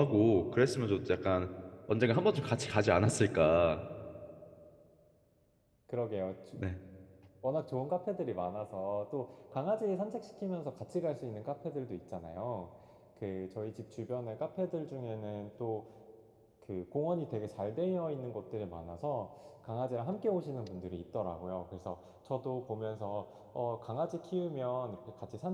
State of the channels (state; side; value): identical; both; correlation 1.00